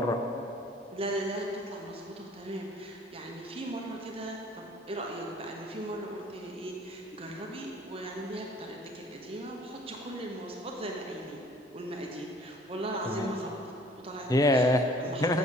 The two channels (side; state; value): both; normal; correlation 0.54